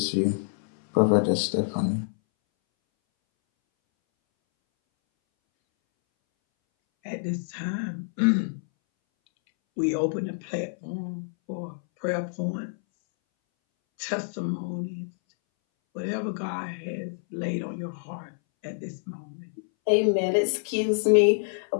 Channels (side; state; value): right; silent; 60 dB below the other